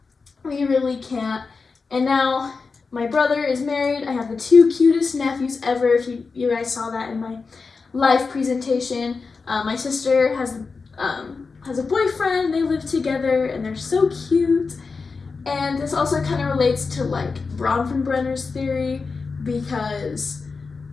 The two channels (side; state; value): right; quieter; 4.6 dB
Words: We really can't. And now my brother is married. I have the 2 cutest nephews ever. If you guys saw that in my live presentation. My sister has a boyfriend. They live together and they're so cute. And this also kind of relates to like Bronfenbrenner's theory because